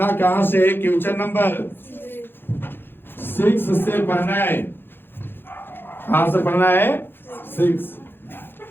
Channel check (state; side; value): late; right; 0.10 ms